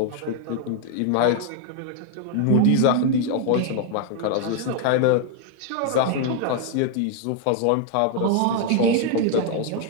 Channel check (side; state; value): both; different; correlation 0.00